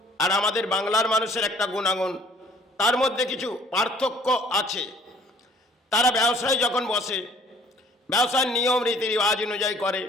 আর আমাদের বাংলার মানুষের একটা গুণাগুণ, তার মধ্যে কিছু পার্থক্য আছে। তারা ব্যবসায় যখন বসে ব্যবসার নিয়ম রীতি রেওয়াজ অনুযায়ী করে,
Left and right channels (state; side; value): normal; both; correlation 0.56